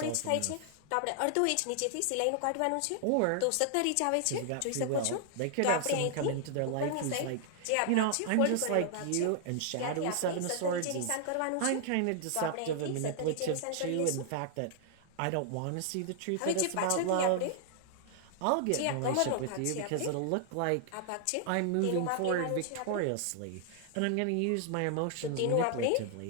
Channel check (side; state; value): both; different; correlation -0.01